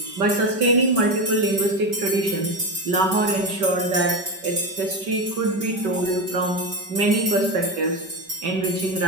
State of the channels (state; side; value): late; left; 5.2 ms